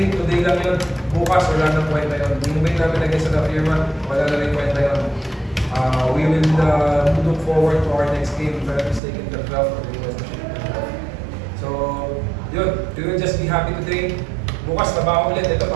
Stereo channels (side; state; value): left; drops out; at 9.0 s